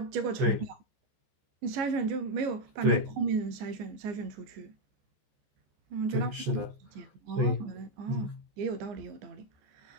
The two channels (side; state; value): left; late; 14 ms